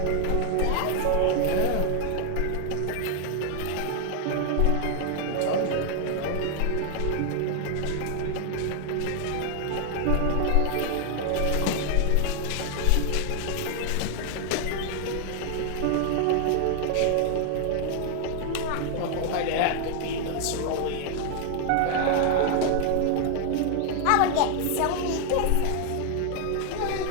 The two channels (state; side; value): different; both; correlation 0.00